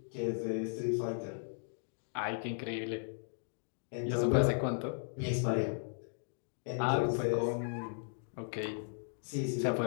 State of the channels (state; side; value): silent; right; digital silence